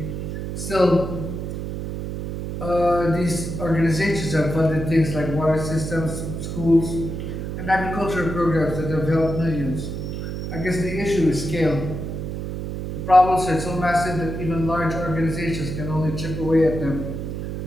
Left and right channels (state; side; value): noise; right; hum, 5 dB below the sound